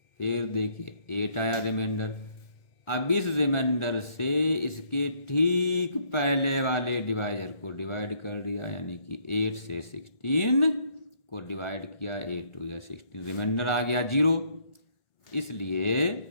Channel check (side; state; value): right; late; 1.4 ms